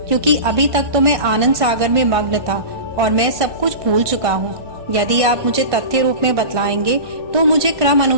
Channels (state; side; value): late; left; 1.5 ms